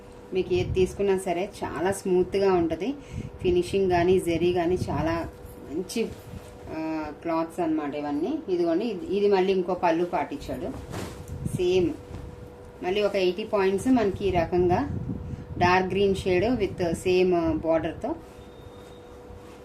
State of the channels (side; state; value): both; identical; correlation 1.00